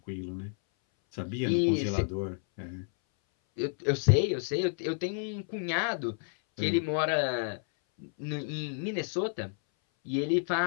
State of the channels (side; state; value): right; silent; 57 dB below the other